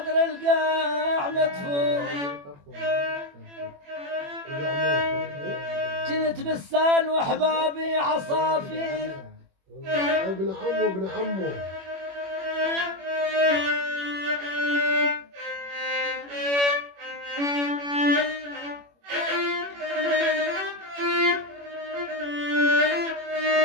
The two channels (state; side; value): late; left; 21 ms